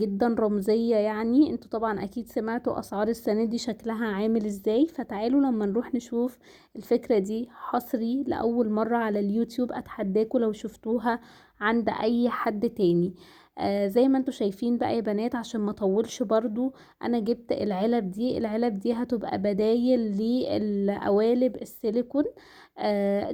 رمزية. يعني انتوا طبعا اكيد سمعتوا اسعار السنة دي شكلها عامل ازاي، فتعالوا لما نروح نشوف. الفكرة دي حصري لأول مرة على اليوتيوب، اتحداكوا لو شفتوها عند اي حد تاني. زي ما انتوا شايفين بقى يا بنات، عشان ما اطولش برضو، انا جبت العلب دي هتبقى بدايل للقوالب السيليكون.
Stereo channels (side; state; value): both; identical; correlation 1.00